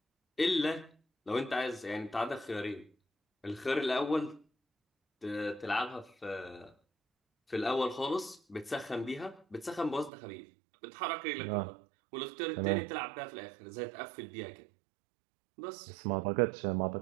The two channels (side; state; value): left; drops out; at 10.1 s